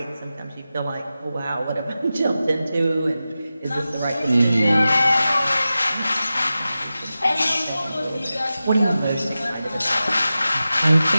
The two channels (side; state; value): both; inverted; correlation -0.94